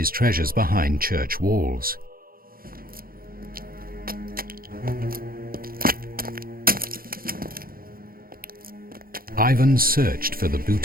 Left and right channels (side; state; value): left; late; 0.42 ms